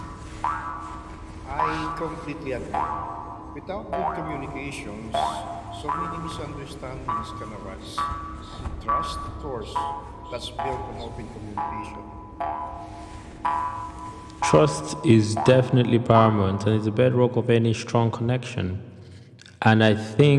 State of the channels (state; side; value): identical; both; correlation 1.00